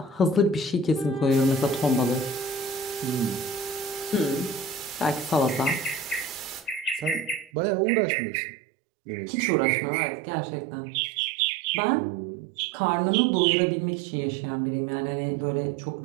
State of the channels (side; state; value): left; drops out; at 7.5 s